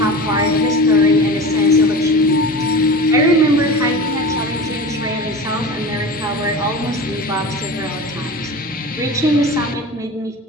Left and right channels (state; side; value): normal; both; correlation 0.32